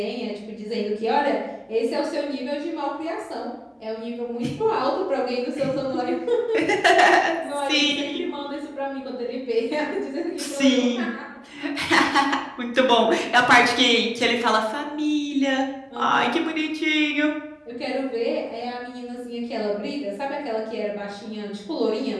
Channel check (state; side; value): identical; both; correlation 1.00